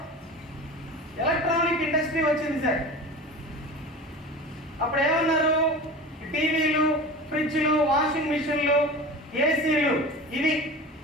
ఎలక్ట్రానిక్ ఇండస్ట్రీ వచ్చింది సార్. అప్పుడు ఏమన్నారు? టీవీలు, ఫ్రిడ్జ్లు, వాషింగ్ మిషన్లు, ఏసీలు, ఇవి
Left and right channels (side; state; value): both; normal; correlation 0.33